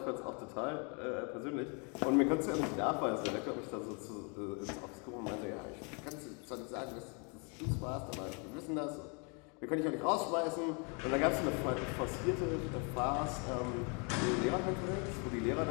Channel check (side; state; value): right; quieter; 35.1 dB